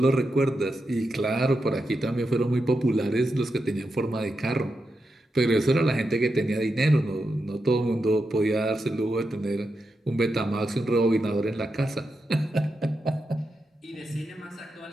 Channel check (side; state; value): both; normal; correlation 0.87